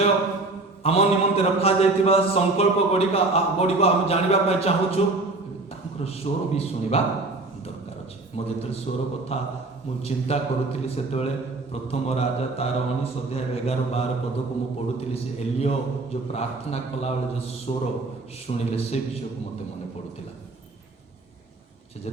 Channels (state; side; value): quieter; left; 3.2 dB